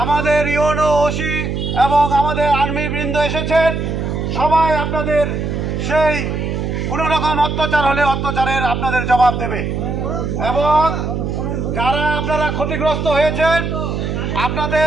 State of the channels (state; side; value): noise; right; hum, 2 dB below the sound